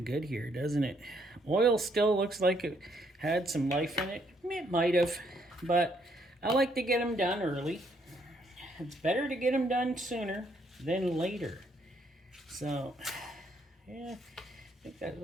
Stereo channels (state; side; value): normal; both; correlation 0.70